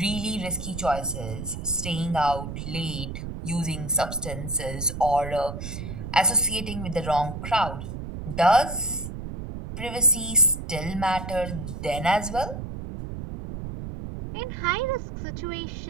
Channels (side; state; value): right; noise; rumble, 7 dB below the sound